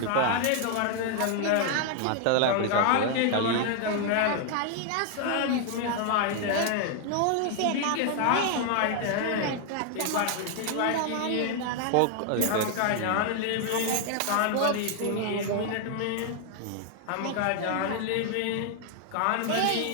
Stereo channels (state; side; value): different; both; correlation 0.00